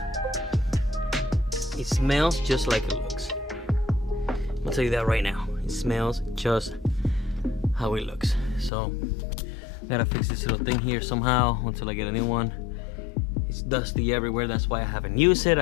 this. It smells just like it looks. I'll tell you that right now. It smells just how it looks. So gotta fix this little thing here somehow until I get a new one. It's dusty everywhere. That's why I haven't used it.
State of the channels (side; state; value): right; drops out; at 8.7 s